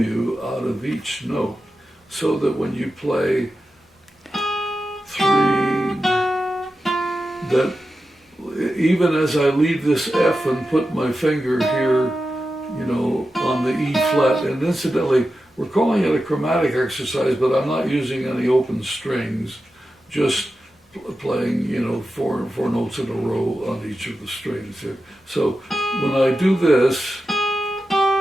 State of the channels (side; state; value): both; normal; correlation 0.91